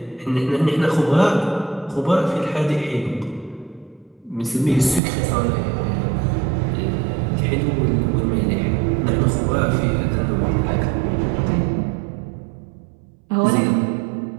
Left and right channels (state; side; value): drops out; left; at 5.0 s